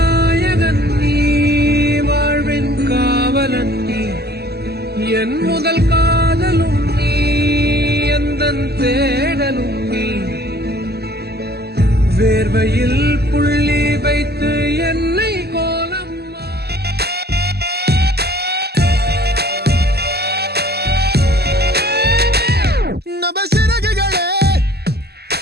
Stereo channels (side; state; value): left; late; 0.47 ms